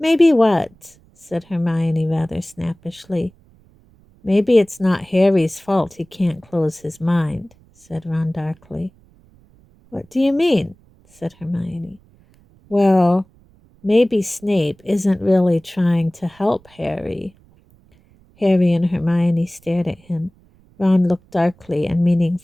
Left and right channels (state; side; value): noise; right; rumble, 30 dB below the sound